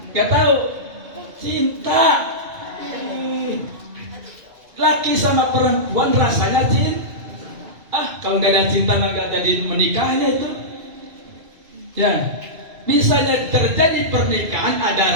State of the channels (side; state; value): left; late; 2.5 ms